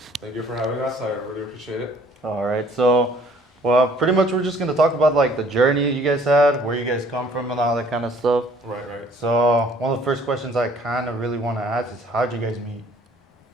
Thank you for having us. I really appreciate it. All right, so, well, pretty much we're just going to talk about like the journey you guys had, where you guys come from, and all that kind of stuff. Right. So, one of the first questions I kind of really want to ask is how'd you guys meet?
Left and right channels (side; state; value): both; normal; correlation 0.57